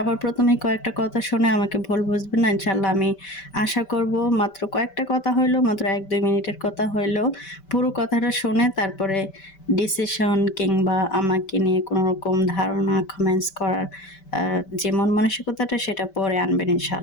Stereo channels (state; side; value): late; right; 5.2 ms